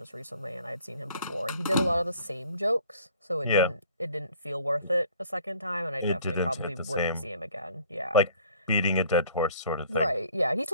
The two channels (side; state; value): both; inverted; correlation -0.54